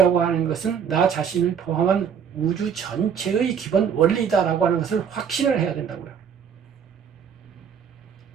하는 것은 나 자신을 포함한 우주 전체의 기본 원리다라고 하는 것을 확신을 해야 된다고요.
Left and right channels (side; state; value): left; quieter; 7.5 dB